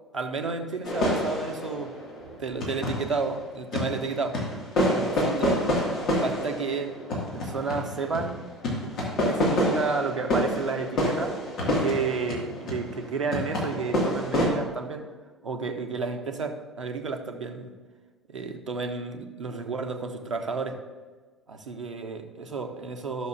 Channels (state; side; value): normal; both; correlation 0.36